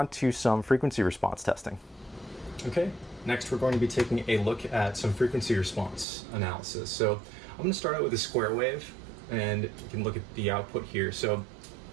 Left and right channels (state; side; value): drops out; left; at 6.1 s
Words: to some frequency response testing. Okay, next we're going to be taking a look at some frequency response analysis. So I'm going to start out with a square wave, and you can look at the output here. So